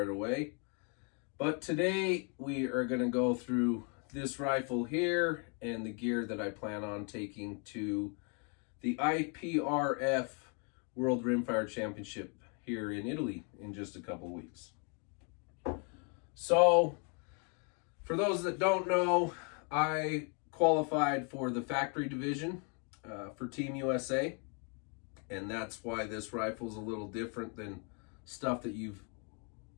away. But today we are going to go through this rifle here and the gear that I plan on taking to the IPRF World Rimfire Championship here in Italy in just a couple weeks. So, for those that don't know, I qualified for the factory division for Team USA, and that's why this rifle is a little different than stuff that you've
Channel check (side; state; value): right; quieter; 38.0 dB